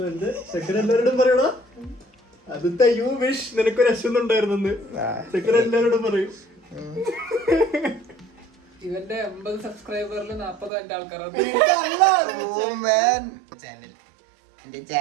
എല്ലാവരോടും പറയണോ അതിത്തെ യു വിഷ് നിനക്കൊരു അശ്വന്നുണ്ടായിരുന്നെന്ന് ചെക്കൻ എല്ലാവരോടും പറയും. ഇവന്റെ 50 സബ്സ്ക്രൈബറിൽ 40 എന്റെ ആൾക്കാരാണ്. എന്റെ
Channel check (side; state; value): left; drops out; at 10.7 s